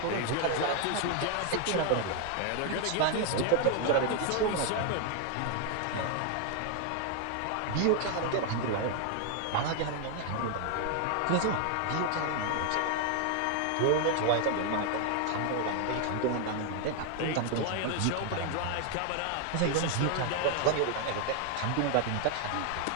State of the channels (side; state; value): both; different; correlation 0.00